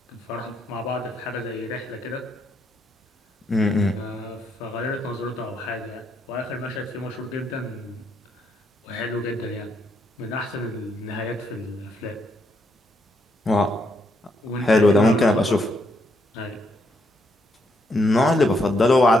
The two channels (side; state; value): both; normal; correlation 0.76